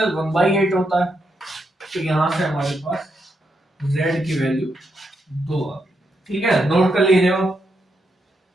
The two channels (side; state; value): both; normal; correlation 0.81